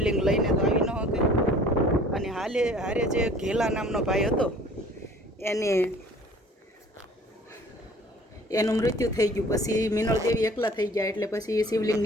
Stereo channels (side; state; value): both; normal; correlation 0.50